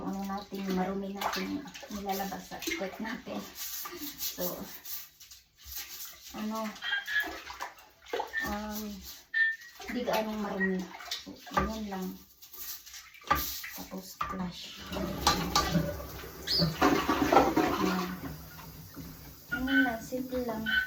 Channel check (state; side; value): identical; both; correlation 1.00